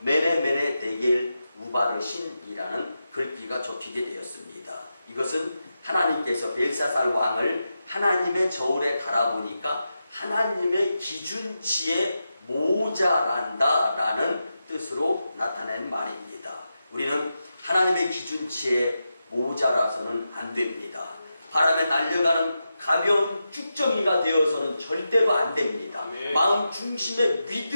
메네메네 데겔 우바르신이라는 글귀가 적히게 되었습니다. 이것은 하나님께서 벨사살 왕을 하나님의 저울에 달아보니까 하나님의 기준치에 모자란다라는 뜻으로 나타낸 말입니다. 우리는 하나님의 기준치에 모자라서는 안 됩니다. 바람에 날려가는 가벼운 쭉정이가 되어서는 절대로 안 됩니다. 마음 중심의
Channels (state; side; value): inverted; both; correlation -0.89